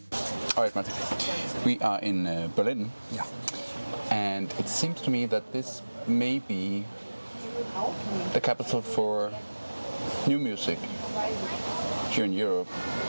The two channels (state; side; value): inverted; both; correlation -1.00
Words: All right, Malte. We are in Berlin, and it seems to me that this may be the capital for new music here in Europe,